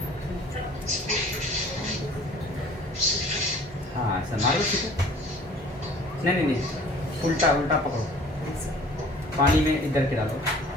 हाँ ऐसा मारो छीटा। नहीं नहीं नहीं, उल्टा उल्टा पकड़ो, पानी में इधर के डालो,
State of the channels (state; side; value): normal; both; correlation 0.50